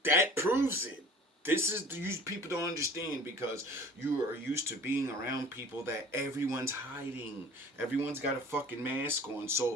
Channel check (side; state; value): both; normal; correlation 0.46